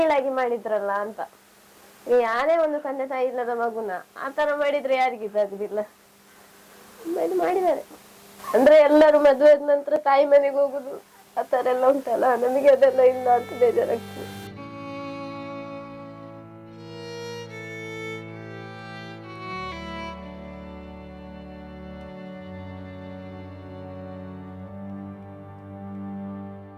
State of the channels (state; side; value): identical; both; correlation 1.00